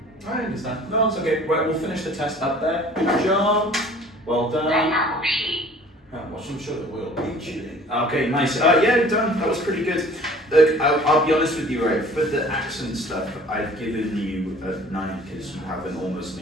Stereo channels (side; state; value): both; normal; correlation 0.49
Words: I understand. No, it's okay. Right, we'll finish the test up there. Good job. Well done. I'm sure it will. Okay, nice. Yeah, done. That was pretty good. Look, I'll be honest with you, right? For the accent stuff, I've given you a 9 because you have an almost